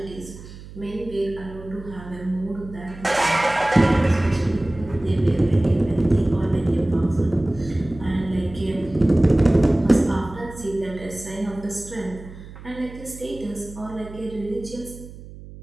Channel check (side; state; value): right; noise; hum, 16 dB below the sound